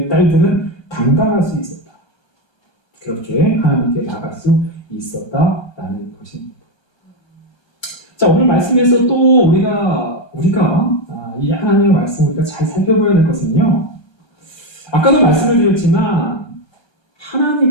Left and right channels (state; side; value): late; right; 1.3 ms